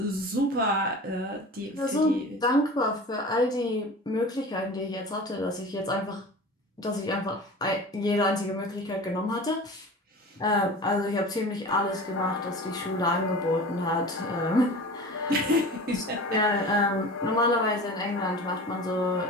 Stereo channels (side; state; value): both; normal; correlation 0.36